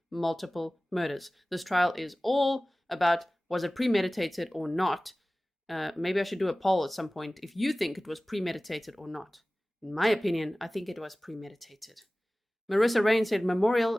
multiple murders. This trial is all about, was it premeditated or not? Maybe I should do a poll at some point if you think it was premeditated or not. In my opinion, I think it was premeditated. Marissa Rain said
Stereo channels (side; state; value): both; normal; correlation 0.98